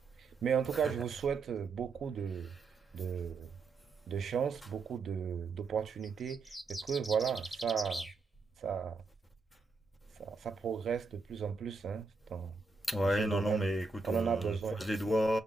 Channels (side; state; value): left; quieter; 4.1 dB